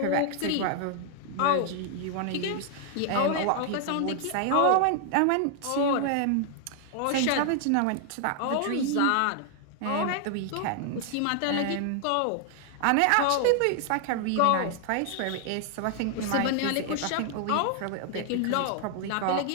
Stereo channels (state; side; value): different; both; correlation 0.00